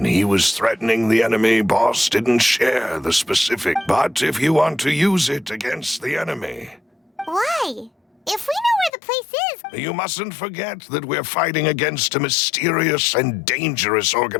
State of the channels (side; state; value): right; drops out; at 8.9 s